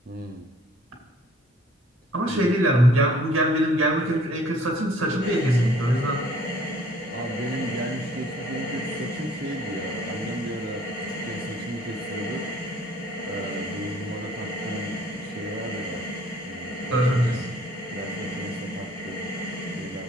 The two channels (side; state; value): both; normal; correlation 0.57